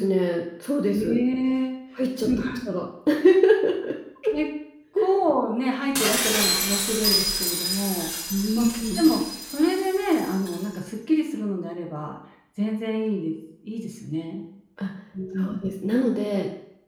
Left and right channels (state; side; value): identical; both; correlation 1.00